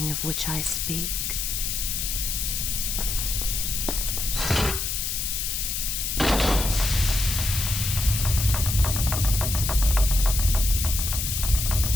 of which I speak.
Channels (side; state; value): left; noise; hiss, 1 dB below the sound